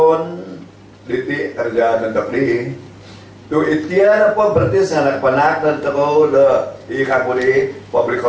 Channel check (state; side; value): identical; both; correlation 1.00